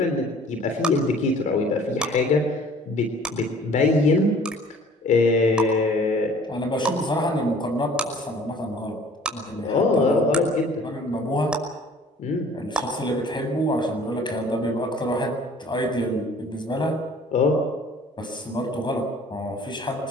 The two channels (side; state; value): both; normal; correlation 0.51